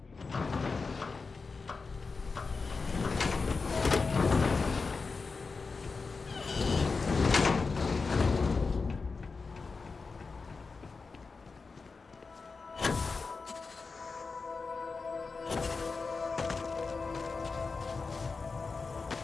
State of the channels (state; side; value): quieter; right; 4.4 dB